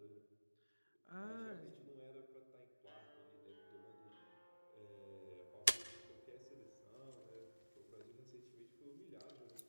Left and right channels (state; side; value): inverted; both; correlation -1.00